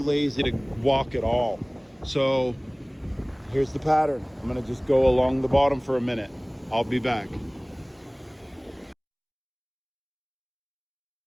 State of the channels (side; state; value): both; identical; correlation 1.00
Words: to walk at all. So here's the pattern. I'm gonna just go along the bottom for a minute. I'll be back.